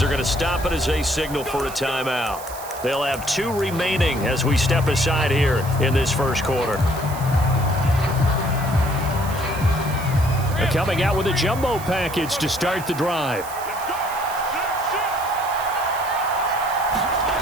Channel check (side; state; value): right; noise; hiss, 14 dB below the sound